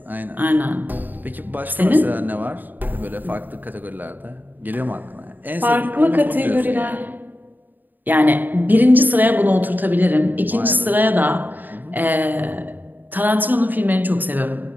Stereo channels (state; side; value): late; left; 0.088 ms